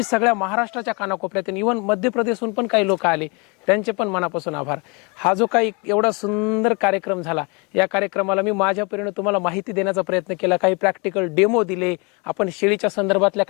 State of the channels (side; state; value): right; quieter; 30.9 dB